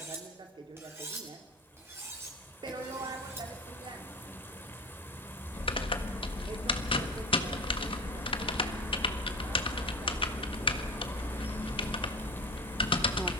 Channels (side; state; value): both; normal; correlation 0.29